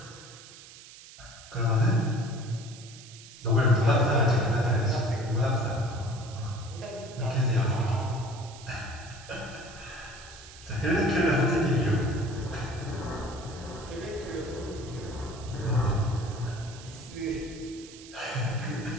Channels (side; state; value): right; noise; hiss, 18 dB below the sound